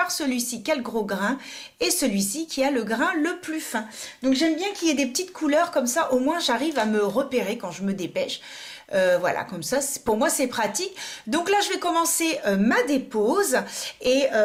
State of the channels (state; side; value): identical; both; correlation 1.00